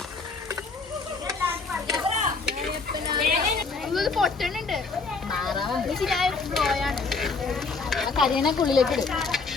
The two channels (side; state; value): right; quieter; 4.3 dB